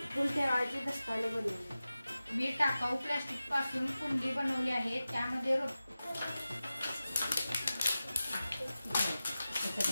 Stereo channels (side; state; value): both; inverted; correlation -0.94